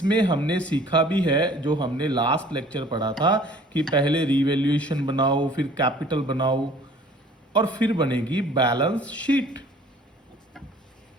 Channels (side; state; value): both; normal; correlation 0.52